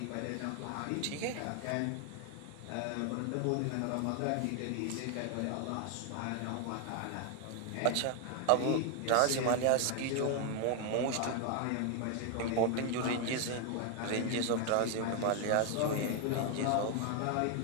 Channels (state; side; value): different; both; correlation 0.00